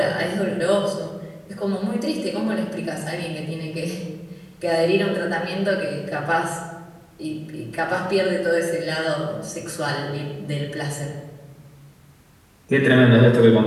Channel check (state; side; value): identical; both; correlation 1.00